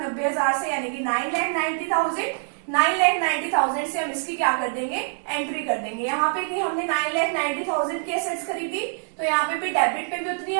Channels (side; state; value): left; silent; digital silence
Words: से, यानी कि 9,90,000, 9,90,000 से हम इसकी क्या कर देंगे, एंट्री कर देंगे। यहाँ पे कि हमने 9,90,000 की एसेट्स खरीदी, तो यहाँ पे भी डेबिट पे भी उतनी